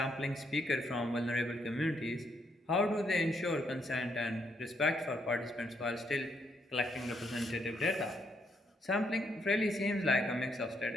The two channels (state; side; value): normal; both; correlation 0.74